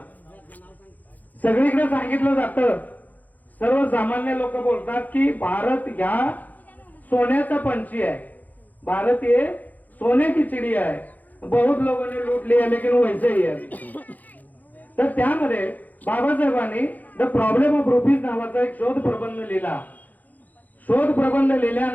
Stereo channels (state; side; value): late; right; 0.081 ms